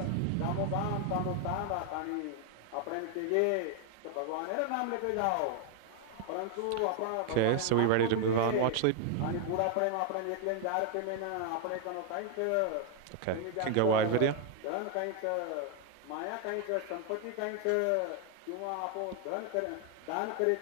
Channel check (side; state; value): both; different; correlation 0.00